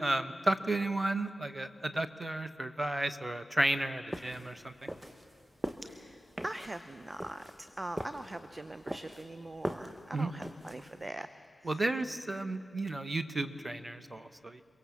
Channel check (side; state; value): both; normal; correlation 0.95